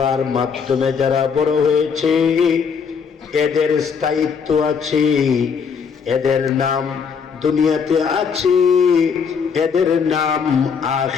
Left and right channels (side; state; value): right; quieter; 6.2 dB